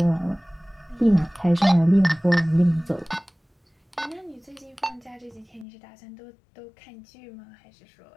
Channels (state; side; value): drops out; right; at 5.7 s